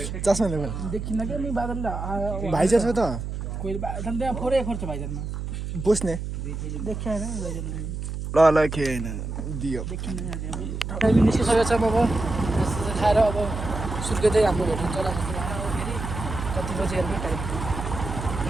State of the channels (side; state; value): right; noise; hum, 5 dB below the sound